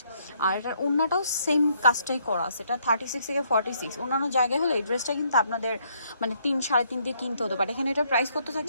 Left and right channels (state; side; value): inverted; both; correlation -0.70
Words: আর এটার ওড়নাটাও সেম কাজটাই করা আছে। এটা 36 থেকে 46। অন্যান্য জায়গায় হলে এই ড্রেসটা কিন্তু আপনাদের মানে 3-3.5 দিয়ে কিনতে হতো, বাট এখানে এটার প্রাইস কত